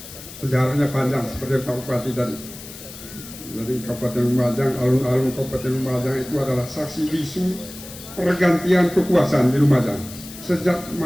Sejarahnya panjang seperti Pak Bupati tadi. Jadi Kabupaten Lumajang, alun-alun Kabupaten Lumajang itu adalah saksi bisu pergantian kekuasaan di Lumajang sejak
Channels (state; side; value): noise; left; hiss, 15 dB below the sound